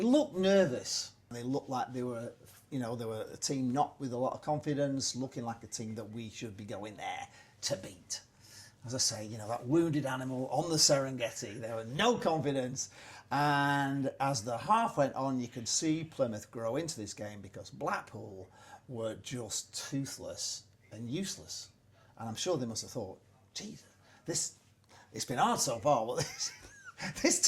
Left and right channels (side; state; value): both; identical; correlation 1.00